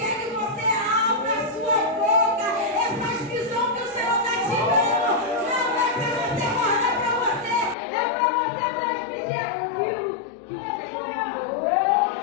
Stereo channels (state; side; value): drops out; right; at 7.8 s